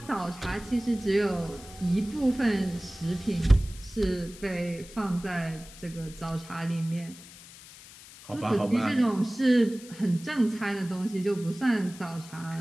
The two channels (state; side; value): noise; left; hiss, 18 dB below the sound